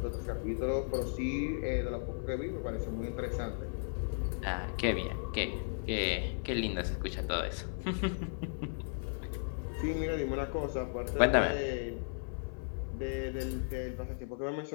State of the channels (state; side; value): silent; right; 54 dB below the other